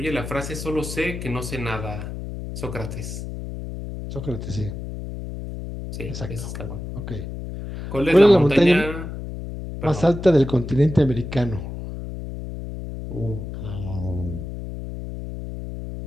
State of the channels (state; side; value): noise; left; hum, 8 dB below the sound